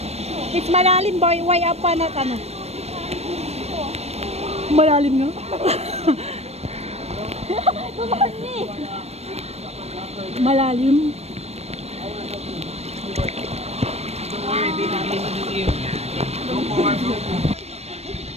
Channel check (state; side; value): late; left; 0.31 ms